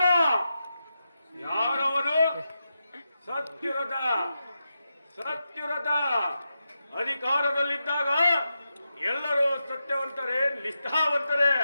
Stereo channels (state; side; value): inverted; both; correlation -0.88